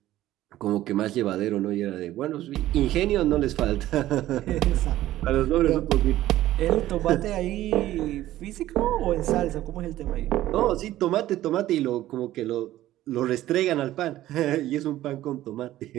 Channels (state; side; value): quieter; left; 14.5 dB